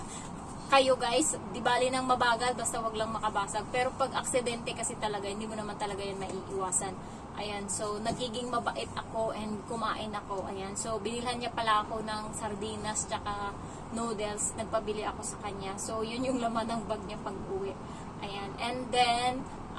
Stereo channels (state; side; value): identical; both; correlation 1.00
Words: kayo guys, di bali nang mabagal, basta wag lang makabasag. Pero pag aksidente kasi talaga, hindi mo naman talaga yan maiiwasan. Ayan. So, nagiging mabait ako and kumain ako. Ayan. So, binilhan niya pala ako ng sardinas tsaka noodles. Nagpabili ako sa kanya. So, yun yung laman ng bag niya pag uwi. Ayan. And then,